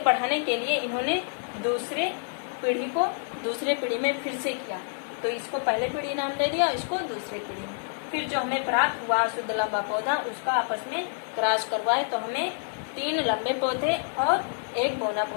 बढ़ाने के लिए इन्होंने दूसरे पीढ़ी में फिर से किया। तो इसको पहले पीढ़ी नाम दे दिया, इसको दूसरी पीढ़ी में। फिर जो हमें प्राप्त हुआ शुद्ध लंबा पौधा, उसका आपस में क्रॉस करवाए तो हमें 3 लंबे पौधे और 1 बौना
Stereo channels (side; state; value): right; silent; 60 dB below the other